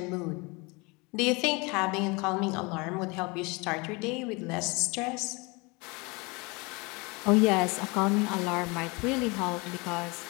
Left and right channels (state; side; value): quieter; right; 27.3 dB